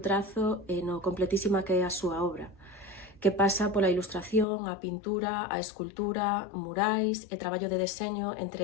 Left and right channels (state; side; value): drops out; right; at 4.5 s